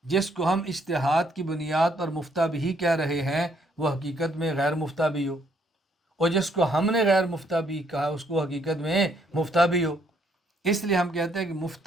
جس کو ہم اجتہاد کی بنیاد پر مفتہ بھی کہہ رہے ہیں وہ حقیقت میں غیر مفتہ بھی ہو، اور جس کو ہم نے غیر مفتہ بھی کہا اس کو حقیقت میں مفتہ بھی ہو۔ اس لیے ہم کہتے ہیں کہ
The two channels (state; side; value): normal; both; correlation 0.69